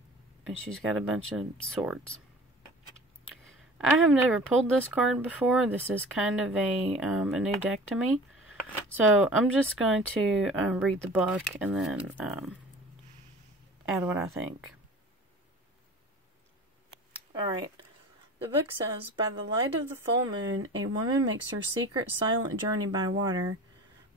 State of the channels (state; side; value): normal; both; correlation 0.41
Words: and she's got a bunch of swords. I have never pulled this card before. This is kind of a new deck to me. So I'm just going to read the book and then add what I think. Alright. The book says, by the light of the full moon, a woman makes her secret silent journey by water.